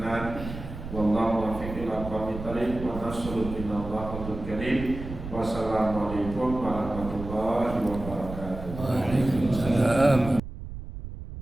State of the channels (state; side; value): noise; right; rumble, 10 dB below the sound